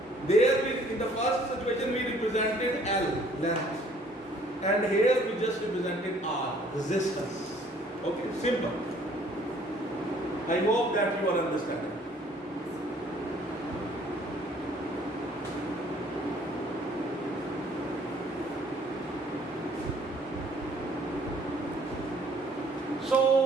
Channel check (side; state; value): both; normal; correlation 0.59